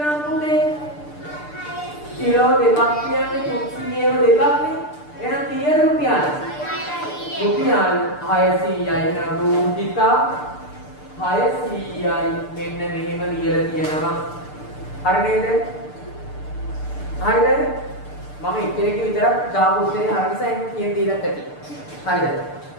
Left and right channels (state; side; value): late; right; 6.7 ms